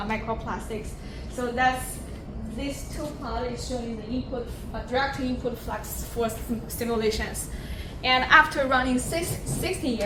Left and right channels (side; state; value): both; identical; correlation 1.00